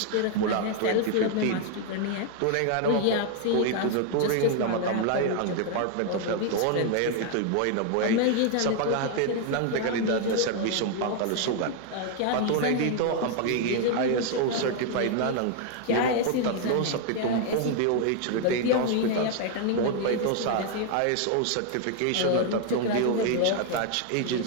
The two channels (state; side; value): different; both; correlation 0.00